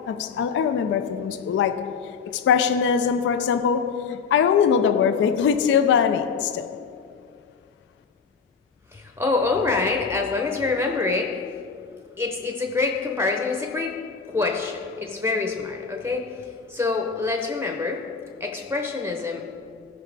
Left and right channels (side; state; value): right; quieter; 5.5 dB